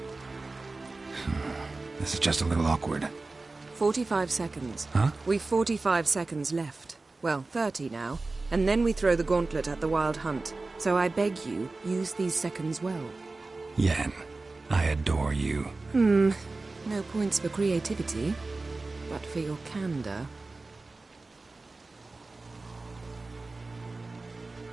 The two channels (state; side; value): quieter; left; 3.4 dB